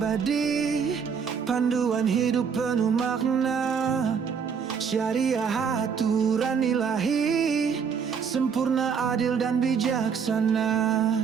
panduan hidup penuh makna, syariah aturan ilahi, sempurna adil dan bijaksana.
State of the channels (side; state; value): left; quieter; 6.5 dB